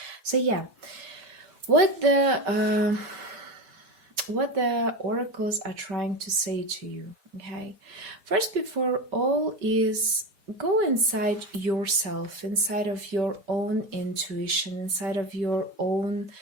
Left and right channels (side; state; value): left; late; 5.2 ms